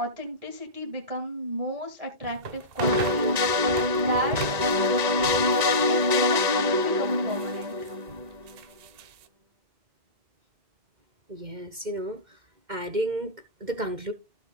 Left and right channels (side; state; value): left; late; 1.9 ms